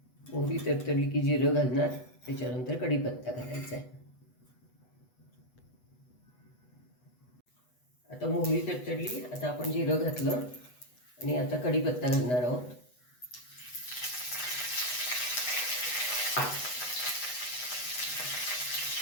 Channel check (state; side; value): late; right; 8.1 ms